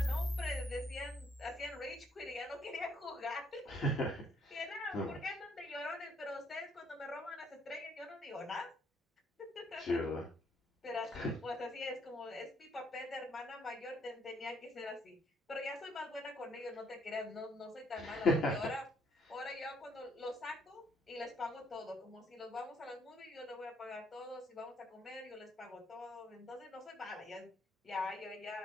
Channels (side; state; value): both; normal; correlation 0.70